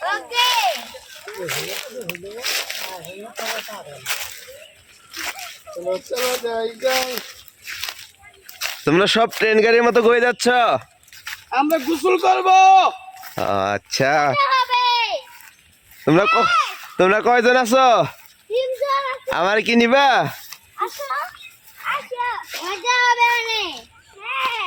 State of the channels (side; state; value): both; identical; correlation 1.00